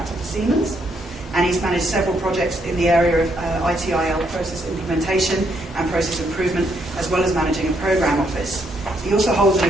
for Siemens, and he's managed several projects in the area of ITIL process implementation and process improvement, as well as managing a program office. He also holds an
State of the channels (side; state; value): both; normal; correlation 0.74